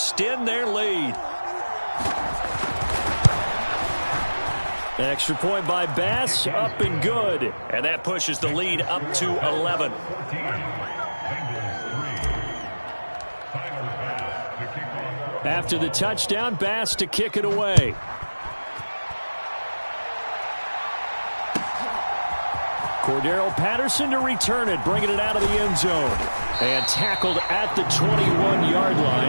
their lead. Extra point by Bass, up and good. And that pushes the lead up to 11. After the touchdown, Bass to kick it away. Cordero Patterson to return it, bringing it out of the end zone. And tackled at the 21-yard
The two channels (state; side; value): inverted; both; correlation -1.00